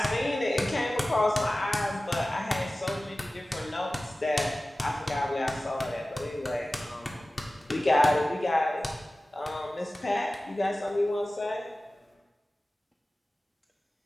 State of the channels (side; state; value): both; normal; correlation 0.96